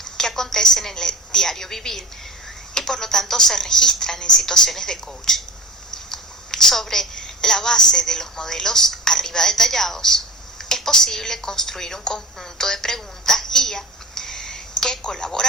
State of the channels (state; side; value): normal; both; correlation 0.34